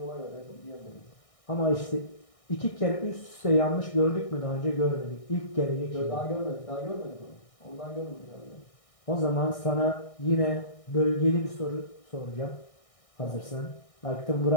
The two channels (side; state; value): right; late; 1.6 ms